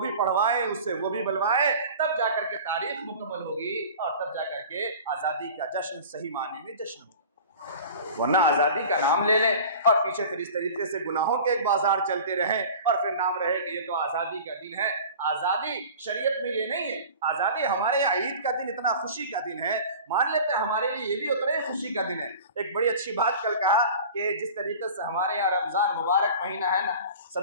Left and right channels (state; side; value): inverted; both; correlation -0.39